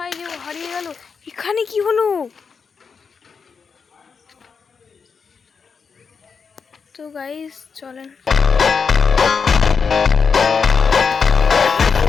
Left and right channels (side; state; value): right; quieter; 5.7 dB